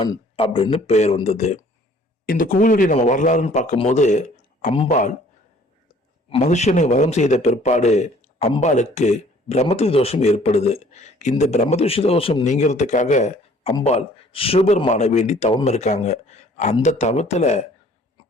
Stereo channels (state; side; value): normal; both; correlation 0.56